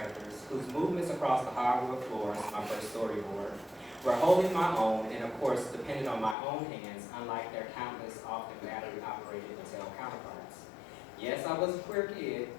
whose movements across the hardwood floors, my first storyboard, were holding my own and of course depended on my own hands, unlike their countless, often battery-operated Mattel counterparts. Yes, I was a queer kid,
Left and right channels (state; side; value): drops out; right; at 6.4 s